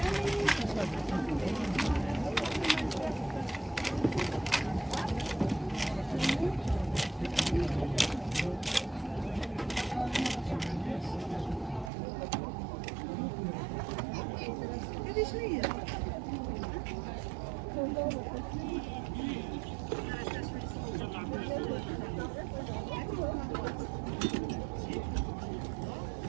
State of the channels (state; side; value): drops out; left; at 11.9 s